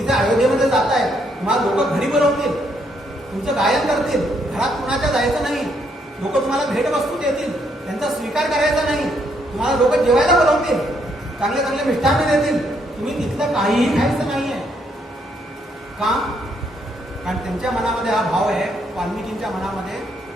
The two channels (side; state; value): both; normal; correlation 0.73